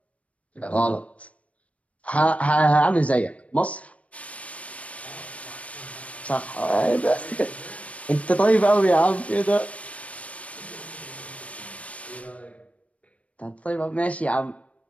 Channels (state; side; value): late; right; 0.065 ms